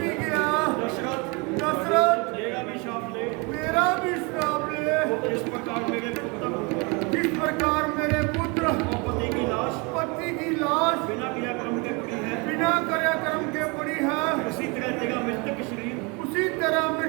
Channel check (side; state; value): left; quieter; 29.7 dB